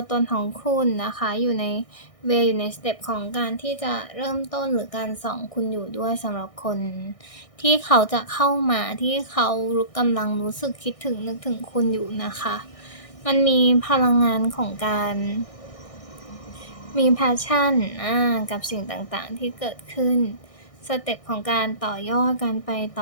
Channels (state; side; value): late; right; 1.6 ms